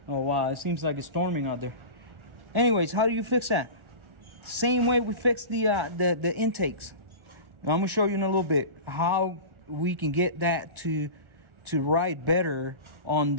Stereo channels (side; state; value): left; late; 1.4 ms